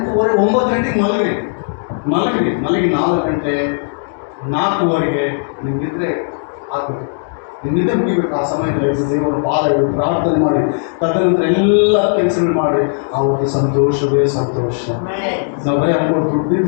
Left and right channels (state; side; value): silent; right; digital silence